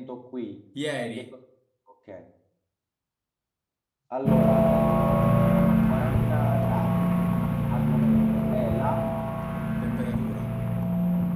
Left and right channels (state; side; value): identical; both; correlation 1.00